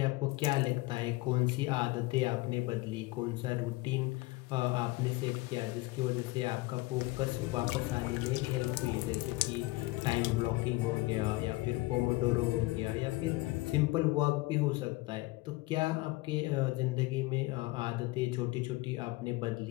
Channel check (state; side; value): quieter; right; 21.2 dB